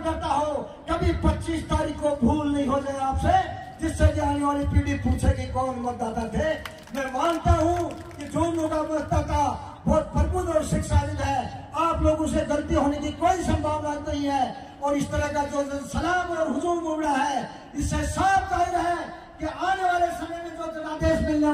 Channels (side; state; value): both; identical; correlation 1.00